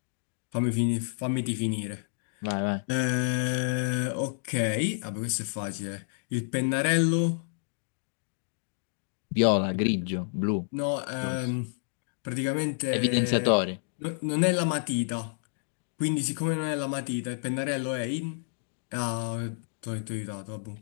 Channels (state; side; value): silent; right; digital silence